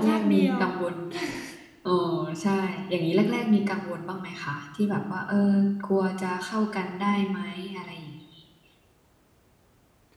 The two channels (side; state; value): both; identical; correlation 1.00